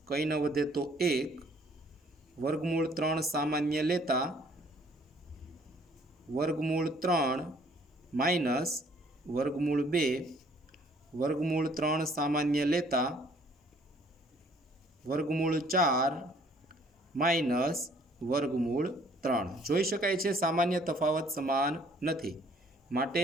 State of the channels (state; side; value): normal; both; correlation 0.60